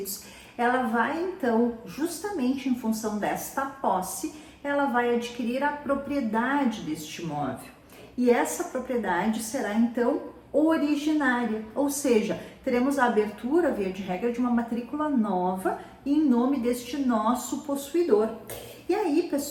ela vai então, justamente em função desta posse, ela vai adquirir a propriedade deste imóvel. E essa propriedade será então originária, ou seja, teremos a abertura, via de regra, de uma matrícula nova em nome deste nosso possuidor. E aí,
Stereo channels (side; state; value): both; identical; correlation 1.00